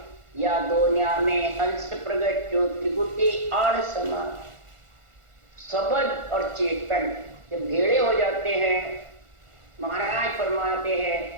या दोनिया में हंस प्रगट ज्योति गुटी आड़ समान। शब्द और चेतन जब भेड़े हो जाते हैं, महाराज फरमाते हैं,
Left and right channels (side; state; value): left; late; 1.4 ms